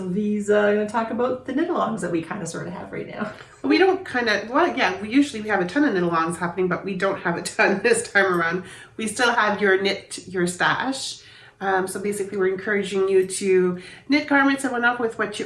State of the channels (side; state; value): both; identical; correlation 1.00